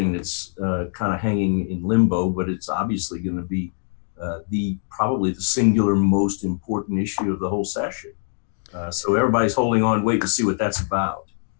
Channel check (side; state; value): right; silent; 64 dB below the other